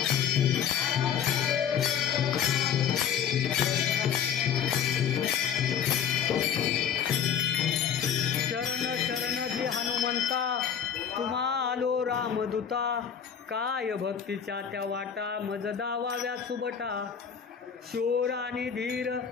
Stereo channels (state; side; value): quieter; right; 8.1 dB